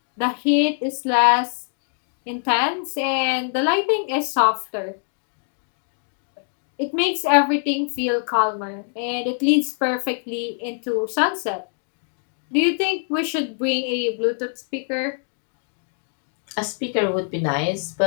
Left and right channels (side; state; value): right; silent; 60 dB below the other